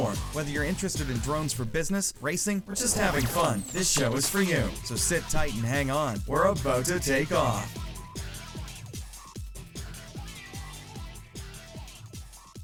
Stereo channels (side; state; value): both; identical; correlation 1.00